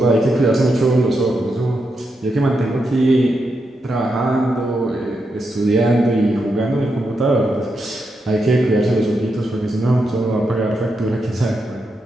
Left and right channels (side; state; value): both; normal; correlation 0.84